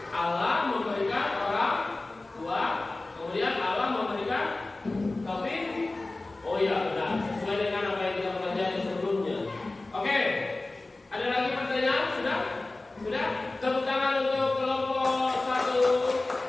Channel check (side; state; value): right; quieter; 3.0 dB